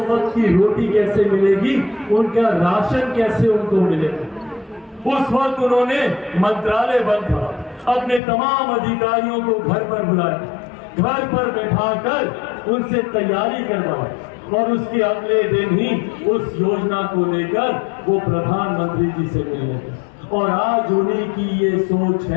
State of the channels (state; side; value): drops out; right; at 8.2 s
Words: वक्त की रोटी कैसे मिलेगी, उनका राशन कैसे उनको मिलेगा। उस वक्त उन्होंने मंत्रालय बंद था, अपने तमाम अधिकारियों को घर पर बुलाया, घर पर बैठाकर उनसे तैयारी करवाई और उसके अगले दिन ही उस योजना को लेकर वो प्रधानमंत्री जी से मिले। और आज उन्हीं की ये सोच